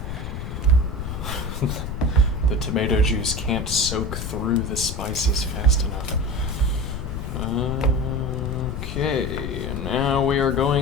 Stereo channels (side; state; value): left; noise; rumble, 5 dB below the sound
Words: The tomato juice can't soak through the spices fast enough. Okay, now we are